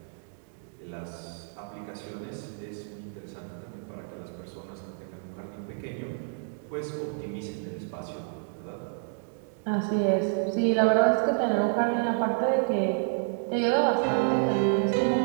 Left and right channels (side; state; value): left; silent; 58 dB below the other